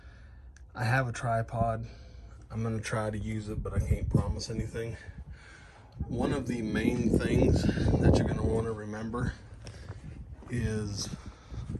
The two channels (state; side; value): identical; both; correlation 1.00